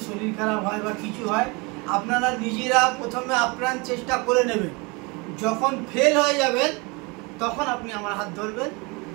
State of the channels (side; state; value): left; quieter; 28.0 dB